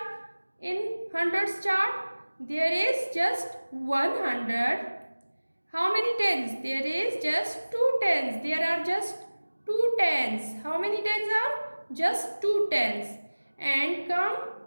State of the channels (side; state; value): both; inverted; correlation -1.00